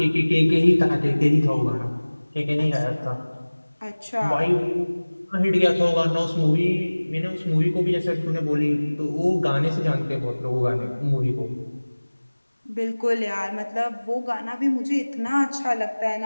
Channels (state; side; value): inverted; both; correlation -1.00